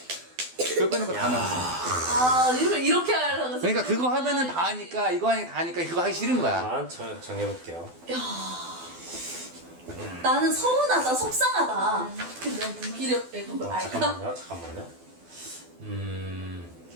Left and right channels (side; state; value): left; late; 12 ms